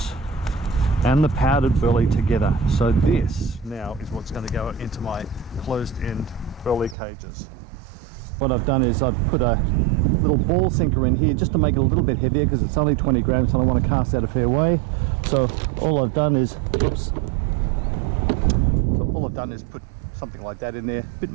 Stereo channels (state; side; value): drops out; left; at 7.0 s